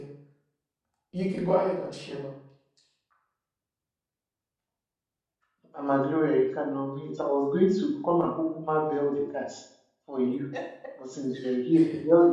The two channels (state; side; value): identical; both; correlation 1.00